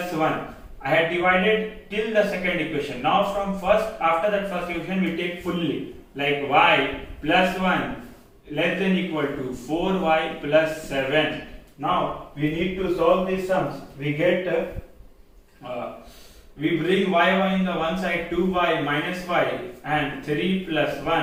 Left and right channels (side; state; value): both; identical; correlation 1.00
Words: 1. I had divided till the second equation. Now from after that first equation we take fully, like y plus 1 less than equal to 4y plus 7. Now we need to solve these sums. We get we bring y in the one side, 2y minus y, and 3 plus